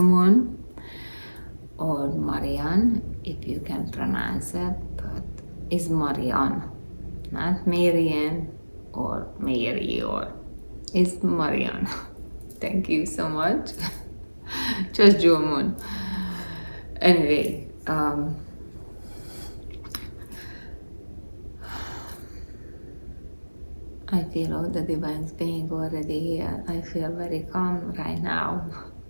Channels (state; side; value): inverted; both; correlation -1.00